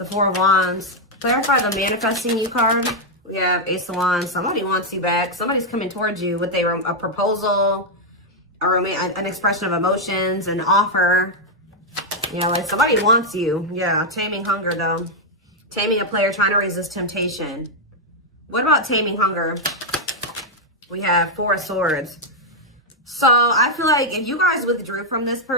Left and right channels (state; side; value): normal; both; correlation -0.01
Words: Four of Wands. Clarify the manifesting you card. We have Ace of Wands. Somebody wants you back. Somebody's coming towards you with a proposal. An expression of emotions, an offer. Yeah, like somebody wants you. Yeah, taming hunger though. Taming a player trying to resist temptation. What about taming hunger? We have Four of Swords. So I feel like if you guys withdrew from this